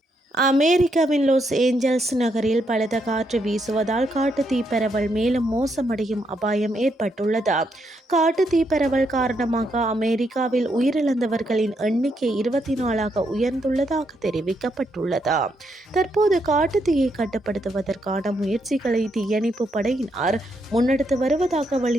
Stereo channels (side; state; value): both; normal; correlation 0.78